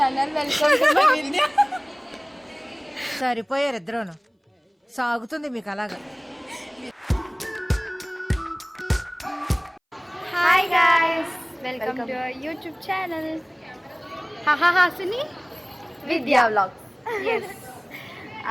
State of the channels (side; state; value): both; identical; correlation 1.00